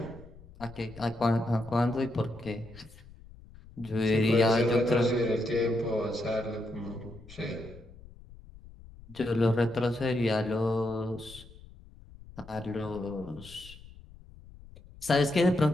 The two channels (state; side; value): noise; left; rumble, 20 dB below the sound